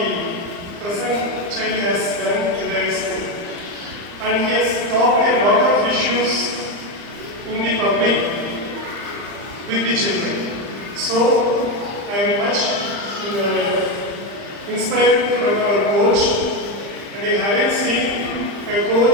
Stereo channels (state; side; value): late; left; 35 ms